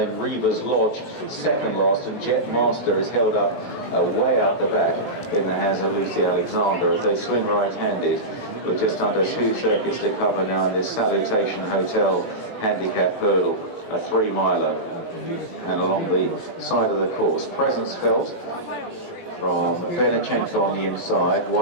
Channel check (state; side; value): late; right; 17 ms